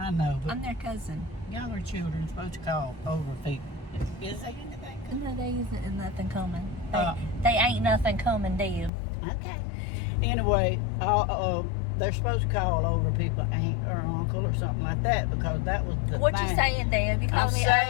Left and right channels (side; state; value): right; drops out; at 8.9 s